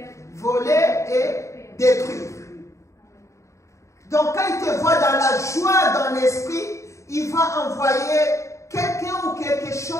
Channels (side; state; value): right; late; 0.14 ms